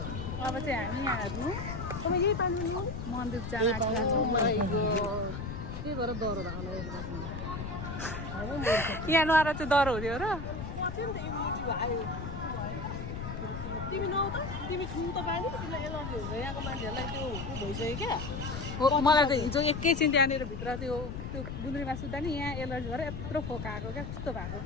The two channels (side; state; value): left; noise; rumble, 6 dB below the sound